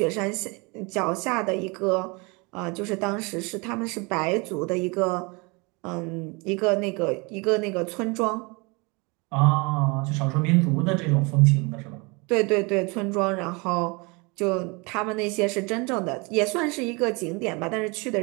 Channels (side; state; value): left; quieter; 28.7 dB